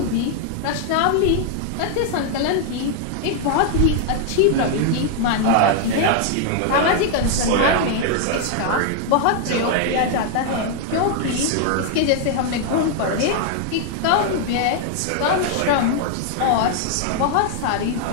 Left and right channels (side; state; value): both; different; correlation 0.00